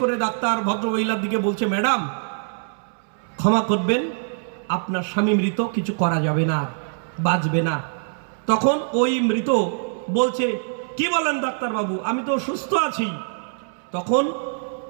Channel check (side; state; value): left; silent; 63 dB below the other